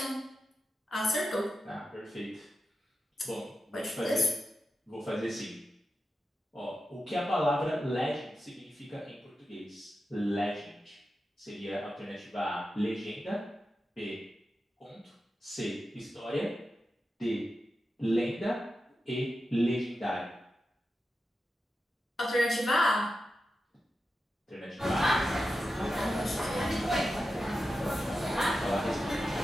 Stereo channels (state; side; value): normal; both; correlation 0.91